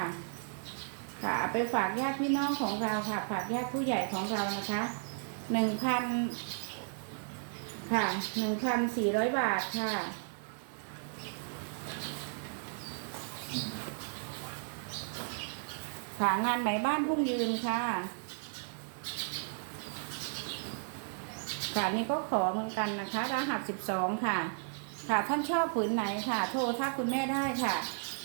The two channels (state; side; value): silent; left; digital silence